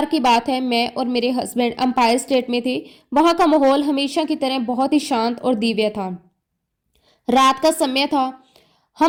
की बात है, मैं और मेरे हस्बैंड एम्पायर स्टेट में थे। वहां का माहौल हमेशा की तरह बहुत ही शांत और दिव्य था। रात का समय था,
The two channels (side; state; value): both; identical; correlation 1.00